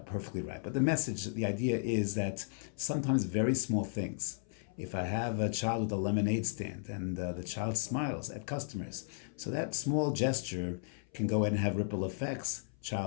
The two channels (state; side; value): silent; right; 55 dB below the other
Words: perfectly right. But the message, the idea is that sometimes very small things. If I have a child with a lemonade stand and the child smiles at customers, so that small gesture can go ahead and have ripple effects.